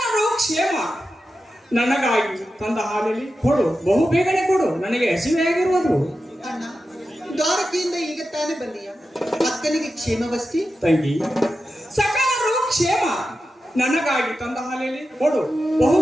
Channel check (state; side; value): normal; both; correlation 0.91